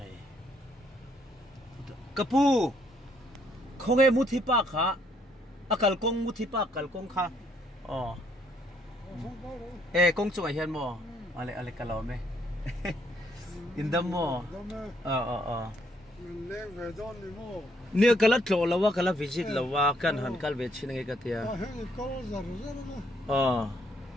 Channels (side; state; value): both; normal; correlation 0.69